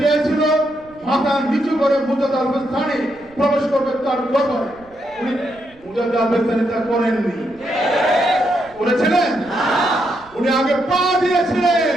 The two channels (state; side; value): noise; right; rumble, 27 dB below the sound